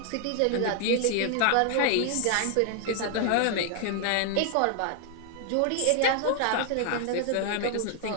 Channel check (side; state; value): both; different; correlation 0.00